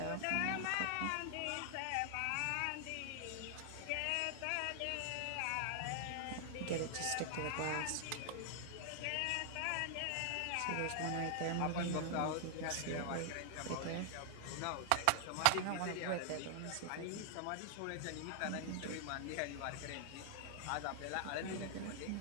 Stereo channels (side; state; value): both; different; correlation 0.00